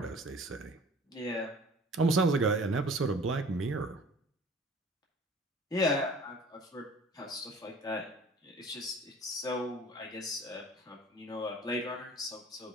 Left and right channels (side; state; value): both; normal; correlation 0.47